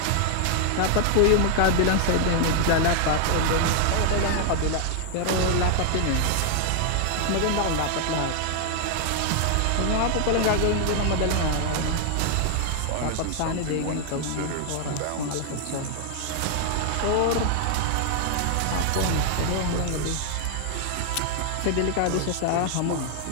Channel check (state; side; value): different; both; correlation 0.00